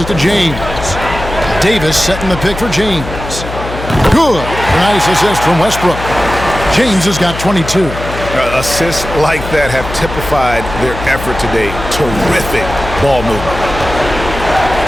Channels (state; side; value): noise; left; hum, 9 dB below the sound